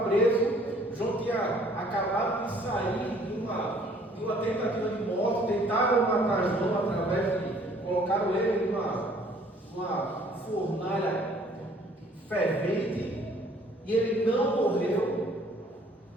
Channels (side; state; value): both; normal; correlation 0.58